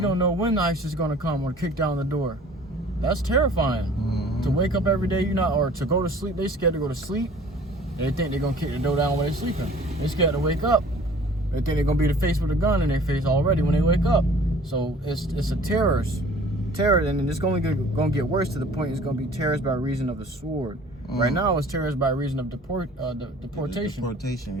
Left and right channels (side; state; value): both; normal; correlation 0.49